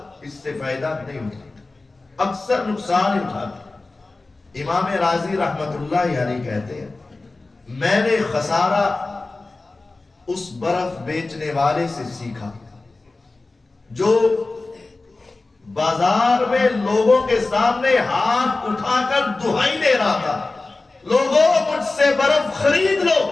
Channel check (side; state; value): right; quieter; 3.4 dB